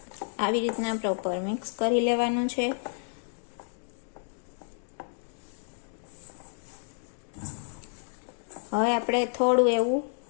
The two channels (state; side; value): silent; right; digital silence